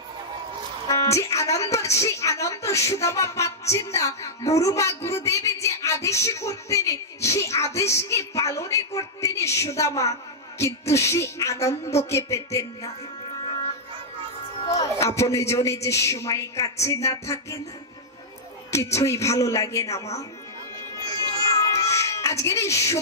যে আনন্দ, সেই আনন্দ সুদামা পাচ্ছেন না। গুরুমা গুরুদেব যে আদেশ করতেন, সেই আদেশকে পালনে করতেন সুদামা, কিন্তু সেই আনন্দকে পেতেন না। আপনি জনে যে সময় কাছে না থাকে না, কিছুই ভালো লাগে না মা। আজকের এই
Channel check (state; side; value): normal; both; correlation -0.07